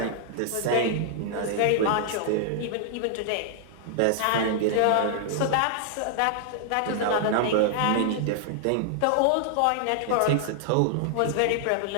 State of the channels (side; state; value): both; different; correlation -0.01